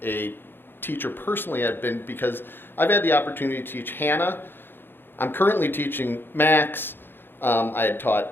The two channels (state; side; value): late; right; 0.10 ms